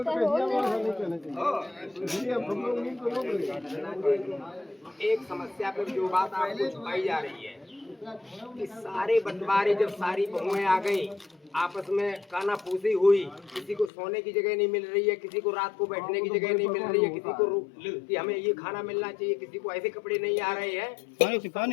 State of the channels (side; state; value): right; drops out; at 13.9 s